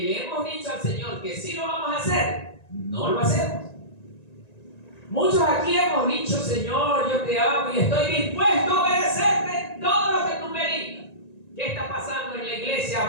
hemos dicho al Señor que sí lo vamos a hacer, no lo hacemos. Muchos aquí hemos dicho: Señor, yo te amo y estoy dispuesto a obedecerte todo lo que tú me digas. ¿Qué está pasando en la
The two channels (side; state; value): right; late; 1.9 ms